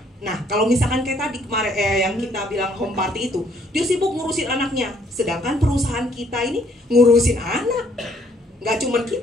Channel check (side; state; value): both; normal; correlation 0.65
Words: Nah, kalau misalkan kayak tadi kemarin yang kita bilang home party itu, dia sibuk ngurusin anaknya. Sedangkan perusahaan kita ini ngurusin anak. Nggak cuma